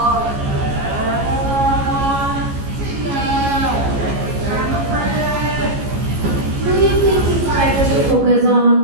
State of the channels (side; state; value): left; late; 14 ms